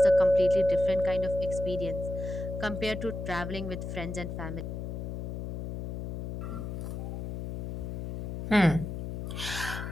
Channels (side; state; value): left; noise; hum, 5 dB below the sound